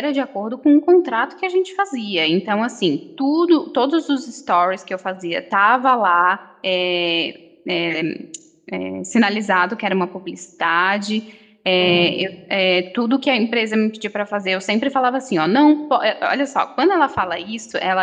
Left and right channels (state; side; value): identical; both; correlation 1.00